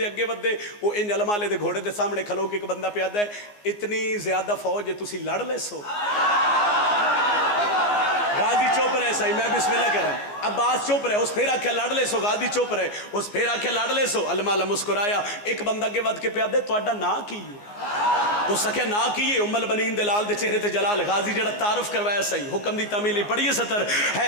अगे वधे वो इंज अलमाले दे घोड़े दे सामने खलो के एक बंदा प्यादा है इतनी ज्यादा फौज है तुसी लड़ ले सो। गाजी चुप रहे सही मैं बिस्मिल्लाह करा। अब्बास चुप रहे उस फिर आख्या लड़ ले सो। गाजी चुप रहे उस फिर आख्या लड़ ले सो। अलमाला मुस्कुराया एक बंदा अगे वध के प्यादे तुहाडा नां की है? उस आख्या नां की है उम्मल बनीन दे लाल दे चेहरे ते जलाल। गाजी जेड़ा तारुफ करवाया सही हुक्म दी तामील पढ़िए सतर।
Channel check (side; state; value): right; late; 14 ms